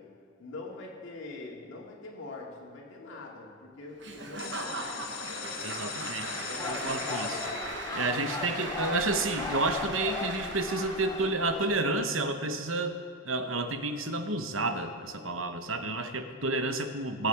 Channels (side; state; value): both; normal; correlation 0.08